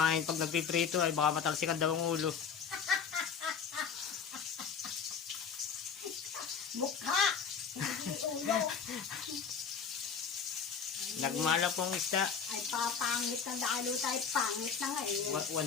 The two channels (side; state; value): right; quieter; 6.6 dB